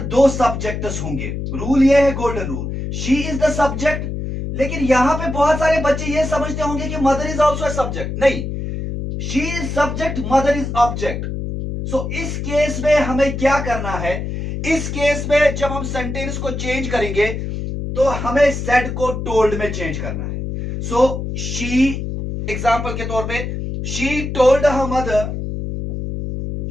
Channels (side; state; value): left; noise; hum, 5 dB below the sound